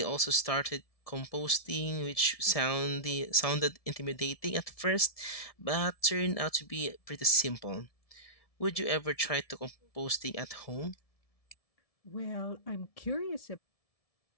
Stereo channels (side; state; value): right; late; 1.7 ms